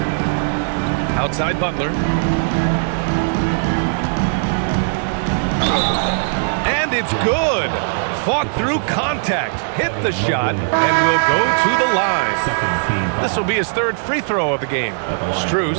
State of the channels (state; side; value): silent; left; digital silence